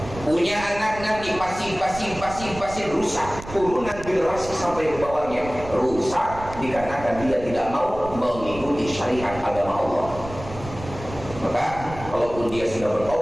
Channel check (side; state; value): right; noise; rumble, 13 dB below the sound